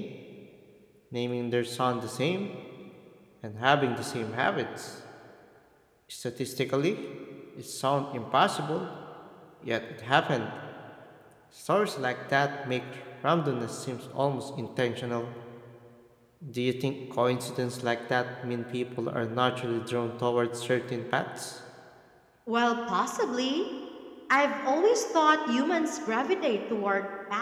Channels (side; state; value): both; identical; correlation 1.00